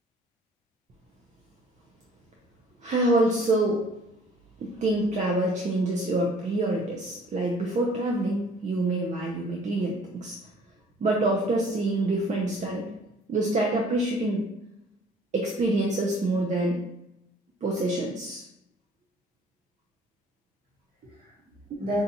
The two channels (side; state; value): both; normal; correlation 0.55